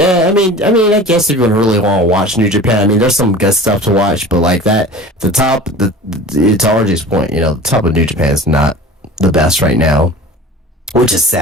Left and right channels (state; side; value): normal; both; correlation 0.39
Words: guess if you really want to watch New Japan, I mean, there's some good stuff to watch, but like that, to RJ's point, the top of New Japan is not the best right now, which is